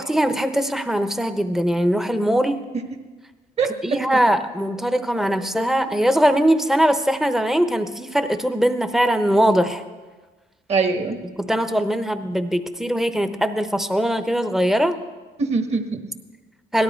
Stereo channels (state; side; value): normal; both; correlation 0.89